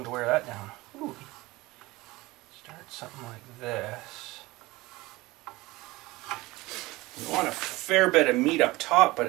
to wear that down. Ooh. Start something like this. You want a fair bit of meat up top, but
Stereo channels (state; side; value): quieter; left; 20.5 dB